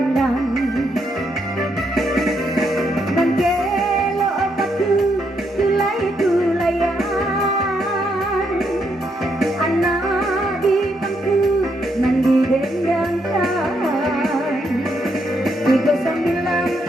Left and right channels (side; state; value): both; normal; correlation 0.77